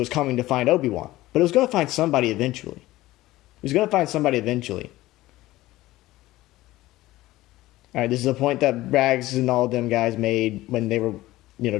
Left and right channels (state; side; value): quieter; right; 17.2 dB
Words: coming to find Obi-Wan. But it was going to find somebody eventually. It was going to find somebody eventually. All right, this is a point that Rags and all of them guys made when they were,